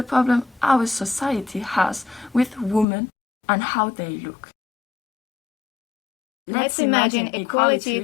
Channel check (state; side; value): drops out; right; at 2.9 s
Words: problem our society has with women and how they look. Let's imagine equality